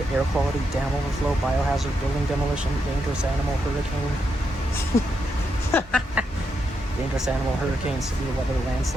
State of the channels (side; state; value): both; normal; correlation 0.82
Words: air quality, dam overflow, biohazard, building demolition, dangerous animal, hurricane, dangerous animal, hurricane, severe weather,